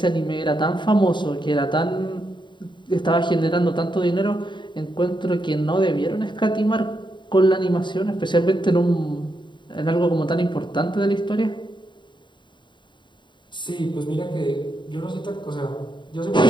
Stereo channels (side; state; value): right; late; 0.23 ms